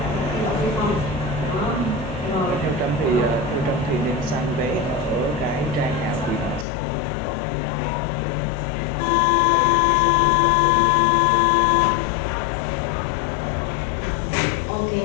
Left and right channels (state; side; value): drops out; right; at 6.7 s